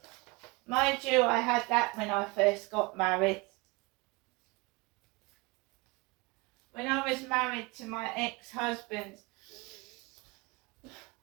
Mind you, I had that when I first got married. When I was married to my ex-husband,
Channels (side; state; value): left; quieter; 26.2 dB